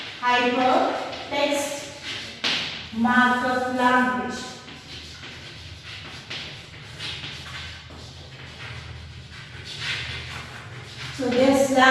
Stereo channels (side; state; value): both; identical; correlation 1.00